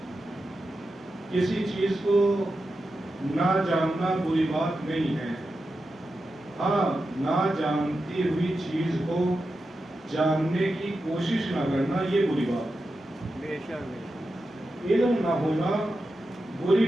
کسی چیز کو نہ جاننا بری بات نہیں ہے. ہاں، نہ جانتی ہوئی چیز کو جاننے کی کوشش نہ کرنا یہ بری بات. علم نہ ہونا بری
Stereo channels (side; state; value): both; normal; correlation 0.90